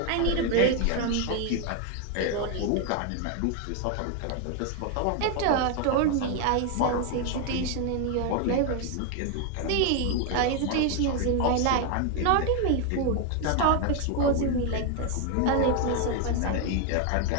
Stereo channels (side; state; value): both; different; correlation 0.01